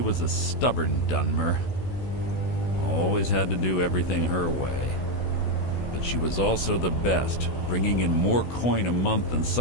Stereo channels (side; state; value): right; late; 16 ms